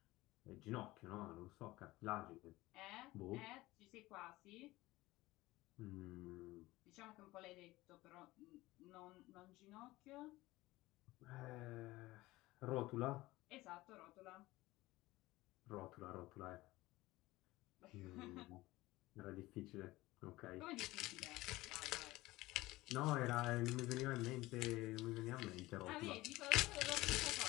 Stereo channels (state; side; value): quieter; right; 18.9 dB